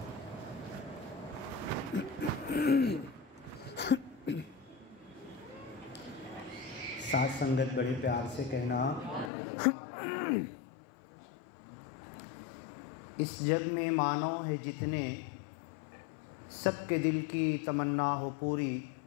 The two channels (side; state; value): right; drops out; at 9.3 s